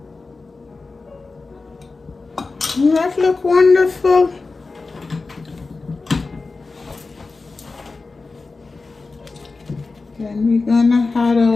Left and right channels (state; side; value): quieter; right; 3.9 dB